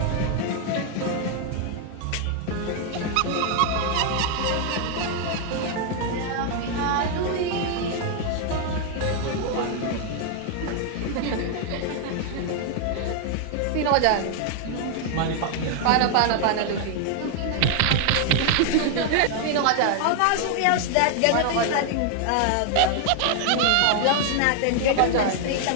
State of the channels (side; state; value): both; different; correlation 0.00